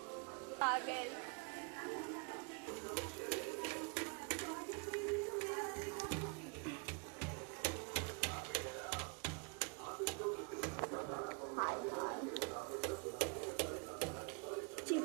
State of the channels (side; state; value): left; quieter; 34.4 dB